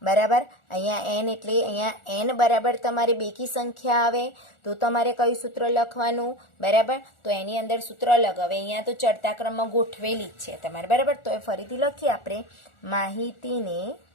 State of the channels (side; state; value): right; late; 1.4 ms